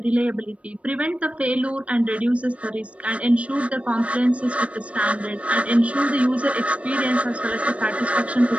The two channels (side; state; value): left; late; 0.064 ms